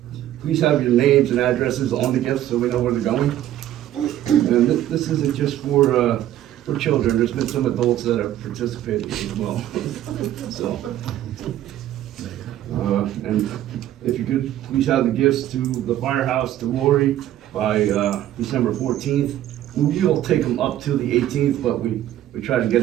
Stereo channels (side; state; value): left; quieter; 12.6 dB